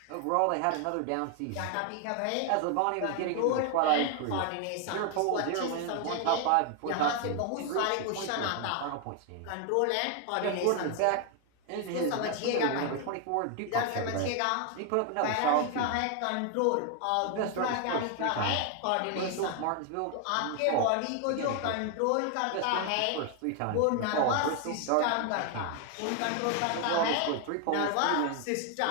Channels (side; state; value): both; different; correlation 0.00